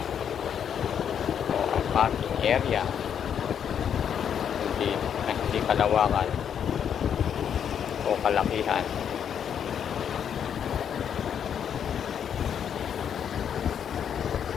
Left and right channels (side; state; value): right; quieter; 8.4 dB